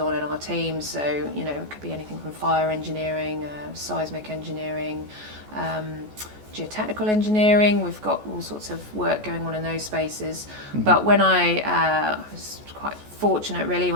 in our team. So, it could be anything from fire engineering, seismic engineering, geotechnical engineering. We've got all sorts of work going on in those spaces. But when I was quite fortunate, really,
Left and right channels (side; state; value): left; late; 14 ms